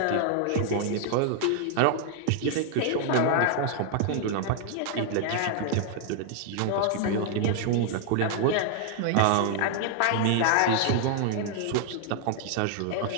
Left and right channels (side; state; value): both; different; correlation 0.00